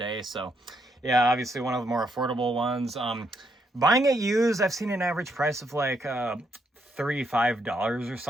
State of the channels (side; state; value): both; normal; correlation 0.76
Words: So, yeah, obviously one of the more affordable ones. Buying it used, I've seen an average price of like $35 or